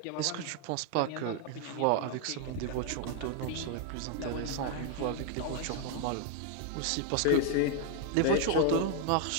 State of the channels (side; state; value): both; different; correlation 0.00